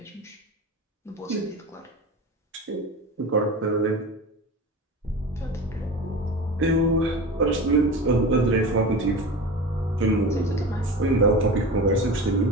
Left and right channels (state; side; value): normal; both; correlation 0.31